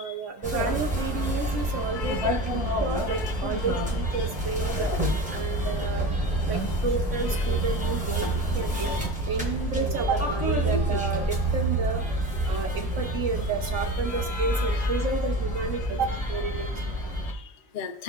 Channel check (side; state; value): both; normal; correlation 0.31